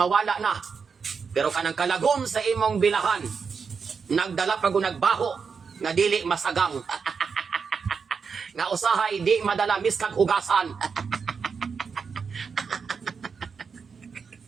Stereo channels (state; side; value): quieter; left; 5.7 dB